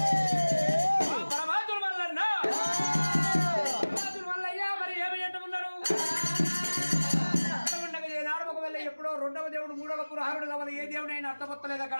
పరమాత్ముడు మల్లన్న పరమాత్ముడు మల్లయ్య మరి ఏమి అంటున్నాడు ఉండగా ఏనాడు ఒకవేళ ఎప్పుడో రెండవ దేవుడు మూడవ పురహారుడు కావాలి ఏ దేవుడు అయినా అర్థమొత్తలేదు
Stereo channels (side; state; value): both; inverted; correlation -1.00